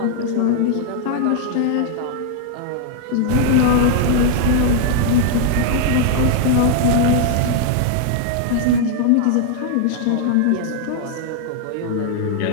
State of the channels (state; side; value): different; both; correlation 0.00